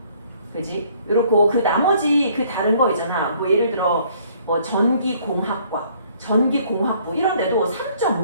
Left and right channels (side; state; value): both; inverted; correlation -0.61